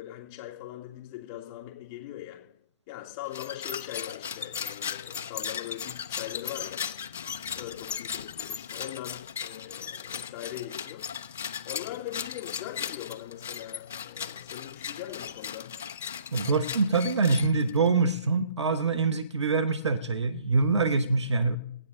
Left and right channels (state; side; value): inverted; both; correlation -0.55